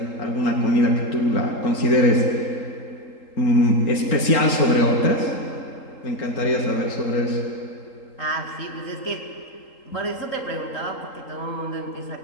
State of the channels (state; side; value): late; right; 3.8 ms